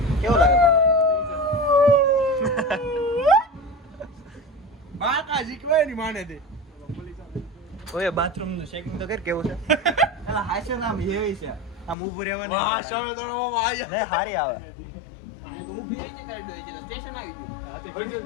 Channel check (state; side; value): drops out; right; at 12.0 s